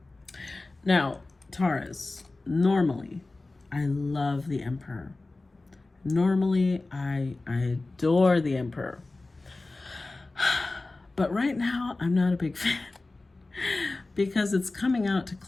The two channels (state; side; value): quieter; right; 3.2 dB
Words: Now, Taurus, normally, I love the Emperor. Normally, I adore the Emperor. But right now, I'm not a big fan. Because it's coming out to